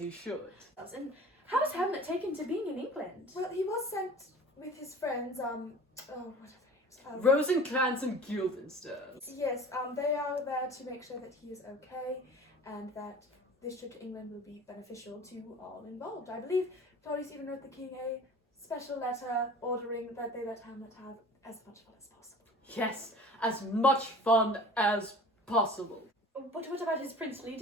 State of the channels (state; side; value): normal; both; correlation 0.43